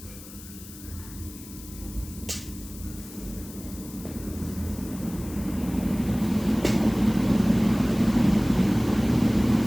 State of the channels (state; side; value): noise; left; hiss, 17 dB below the sound